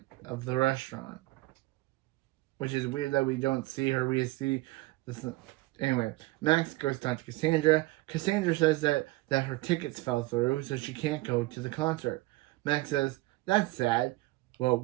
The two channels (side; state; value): left; quieter; 20.5 dB